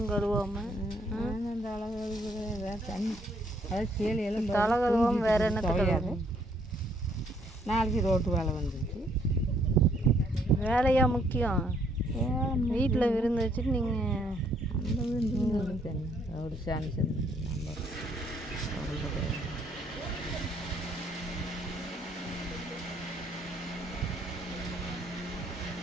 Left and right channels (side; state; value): both; normal; correlation 0.68